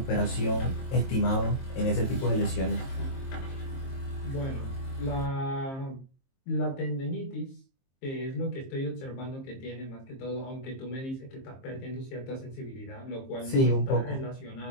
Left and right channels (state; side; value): late; right; 23 ms